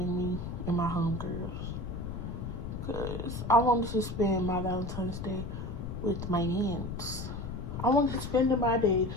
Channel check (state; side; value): noise; left; rumble, 6 dB below the sound